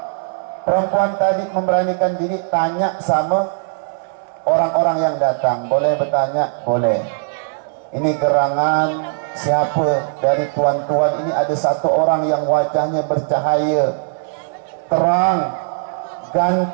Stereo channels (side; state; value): left; silent; 67 dB below the other